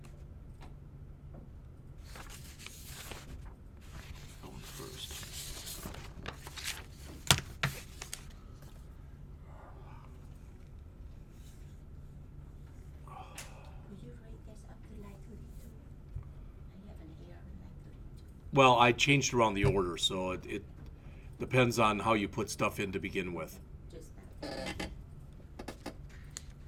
Going first. Could you write this up to line 32? I have an Well, I changed around the order, so it depends on how you put stuff in to begin with. Just that.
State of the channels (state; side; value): identical; both; correlation 1.00